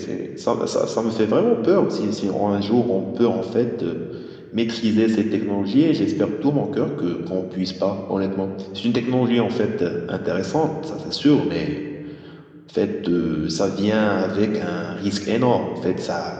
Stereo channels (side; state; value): both; identical; correlation 1.00